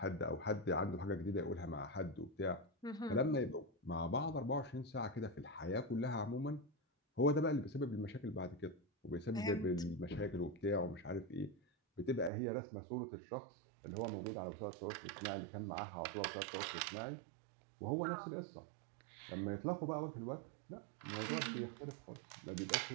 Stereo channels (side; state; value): left; drops out; at 12.3 s